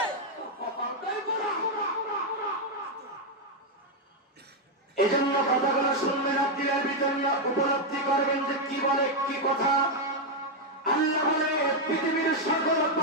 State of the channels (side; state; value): both; normal; correlation 0.01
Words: এজন্য কথাগুলো শুনবেন, আপনার ভিতরে উপলব্ধি করবেন যে কি বলে কি কথা। আল্লাহ বলে পৃথিবীর সকল